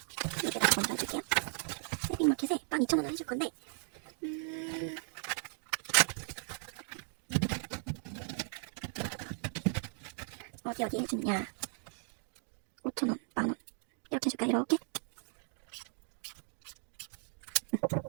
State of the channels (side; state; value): left; silent; 53 dB below the other